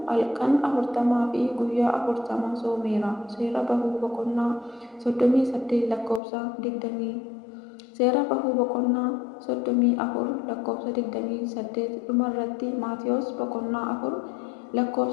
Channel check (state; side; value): drops out; right; at 6.2 s